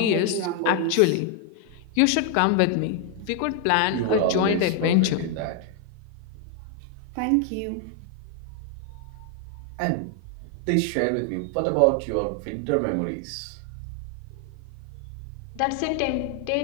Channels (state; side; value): different; both; correlation 0.01